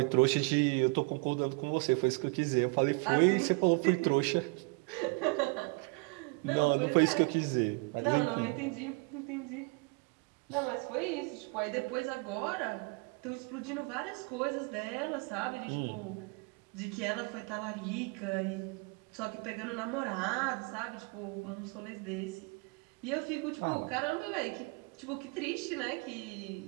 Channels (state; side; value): quieter; left; 30.0 dB